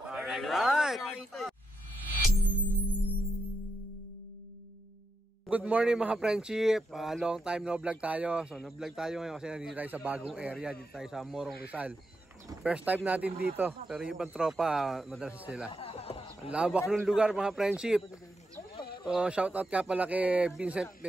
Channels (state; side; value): normal; both; correlation 0.85